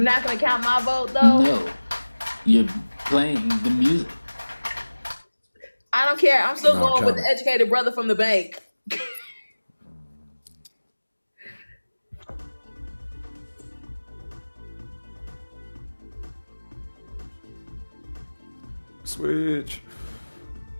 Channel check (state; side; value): inverted; both; correlation -1.00